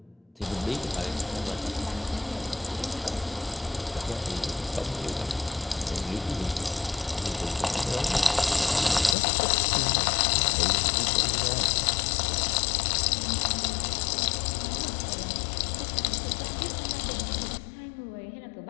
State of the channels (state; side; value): drops out; right; at 9.2 s